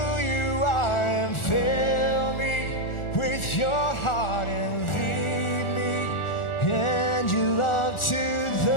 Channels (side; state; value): right; late; 1.4 ms